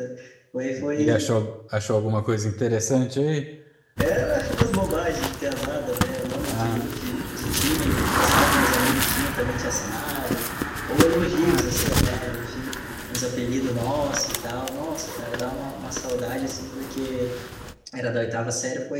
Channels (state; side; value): identical; both; correlation 1.00